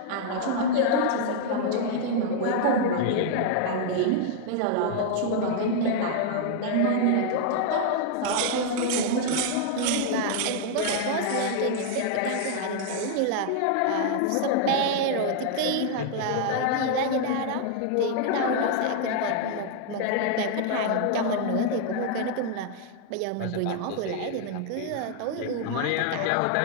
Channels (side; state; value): both; different; correlation 0.00